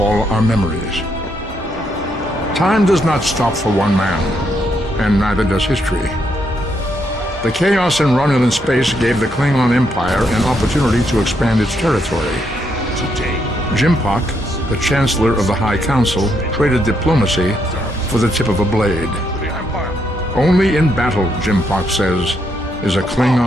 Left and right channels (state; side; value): normal; both; correlation 0.77